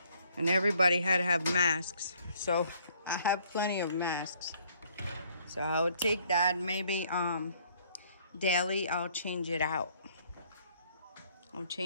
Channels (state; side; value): inverted; both; correlation -0.63